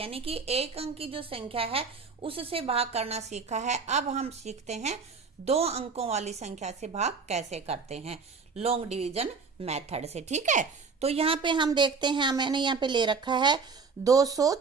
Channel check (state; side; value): quieter; left; 5.0 dB